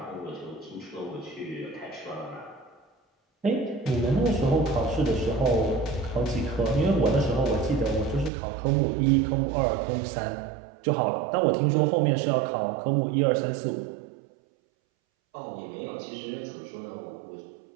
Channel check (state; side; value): drops out; left; at 8.3 s